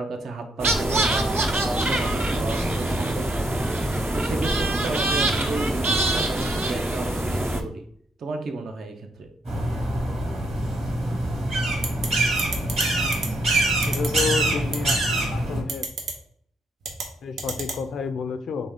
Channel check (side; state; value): both; normal; correlation 0.74